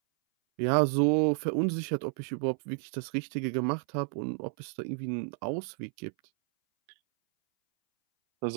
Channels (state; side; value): silent; left; 57 dB below the other